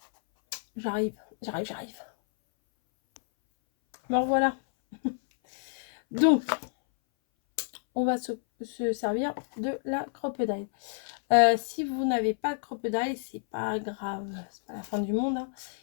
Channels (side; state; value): right; silent; 58 dB below the other